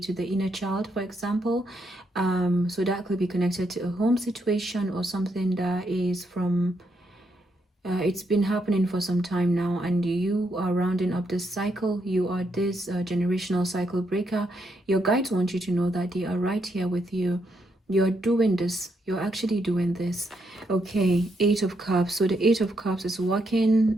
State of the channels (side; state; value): both; normal; correlation 0.78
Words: the inner child, for example. So that could be connected to a home situation or something that is from it's been happening for some time now, and you are rounding up this cycle. You are this generational cycle breaker. Your guides want you to know that they are right here with you. You're doing this. You're actually doing this. Okay, Eight of Cups. So the Eight of Cups is